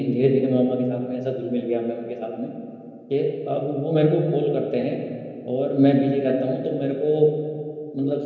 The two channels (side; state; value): both; identical; correlation 1.00